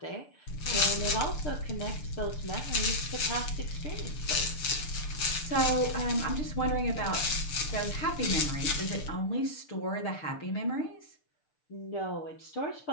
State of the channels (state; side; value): late; right; 6.7 ms